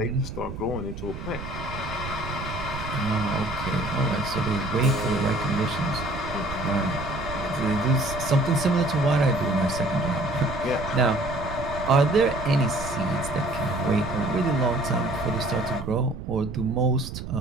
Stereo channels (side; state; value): right; noise; rumble, 9 dB below the sound